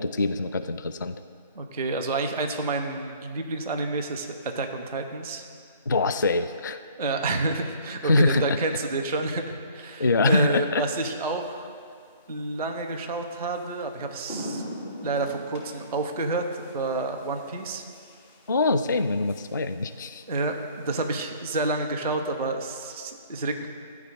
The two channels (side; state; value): both; inverted; correlation -0.54